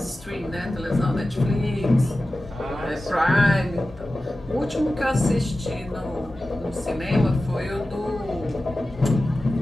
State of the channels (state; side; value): normal; both; correlation 0.94